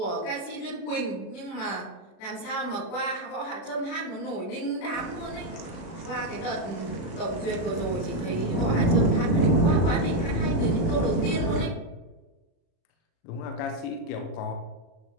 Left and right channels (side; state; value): right; late; 36 ms